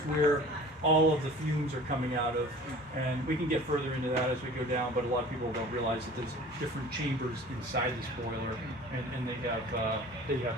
where all of the fumes are coming out of, and we can get further into that as we go down, but a lot of people don't realize that there's different chambers inside this boiler, and they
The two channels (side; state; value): both; normal; correlation 0.44